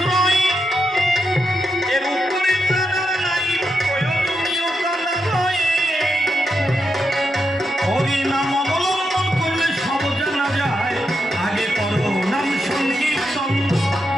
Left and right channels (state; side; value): normal; both; correlation 0.85